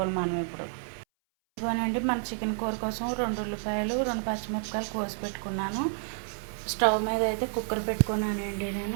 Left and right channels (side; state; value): left; silent; 58 dB below the other